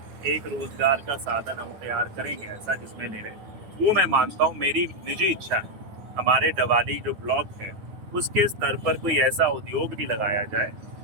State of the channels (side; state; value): left; late; 9.5 ms